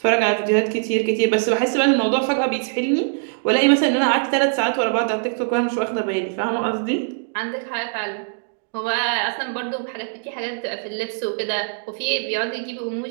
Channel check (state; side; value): silent; left; digital silence